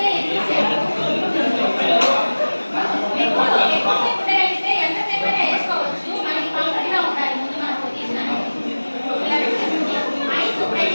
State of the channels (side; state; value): both; inverted; correlation -1.00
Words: ఎక్కువసేపు ఎంతసేపు అయినా వేసుకోవచ్చు. మనకి కంఫర్ట్ గా ఉండాలి. ముందు మనం పొజిషన్ ఐస్